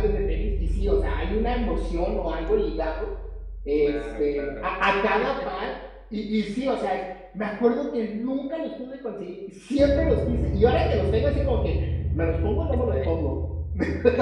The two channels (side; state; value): both; identical; correlation 1.00